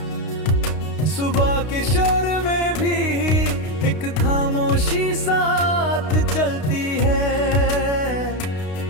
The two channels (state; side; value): late; right; 32 ms